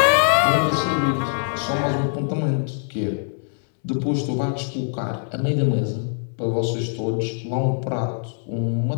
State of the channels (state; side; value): silent; right; 63 dB below the other